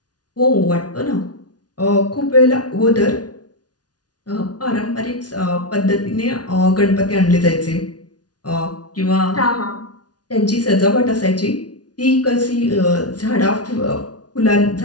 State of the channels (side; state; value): right; late; 0.69 ms